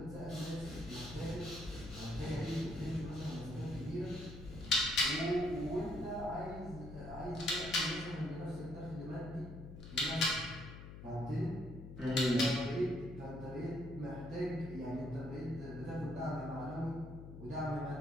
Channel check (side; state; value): left; noise; hum, 12 dB below the sound